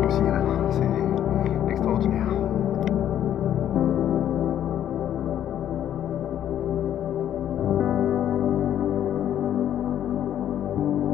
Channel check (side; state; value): right; quieter; 10.7 dB